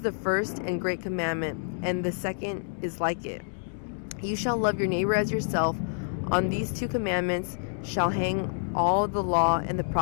the first and great commandment, and the second is like it. You shall love your neighbor as yourself. On these two commandments shall hang all the law and the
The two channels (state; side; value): silent; right; digital silence